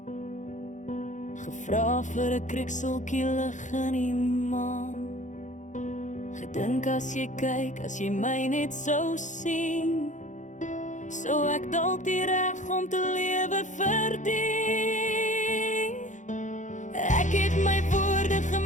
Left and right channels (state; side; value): late; right; 0.36 ms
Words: gevra vir 'n krikseltjie lig in die maan. Gedink as jy kyk, as jy my net sou sien, sou ek dalk die reg om te lewe verdien. Ek het my woorde